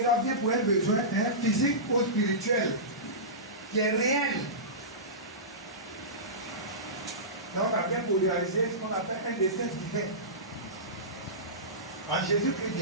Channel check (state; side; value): normal; both; correlation -0.20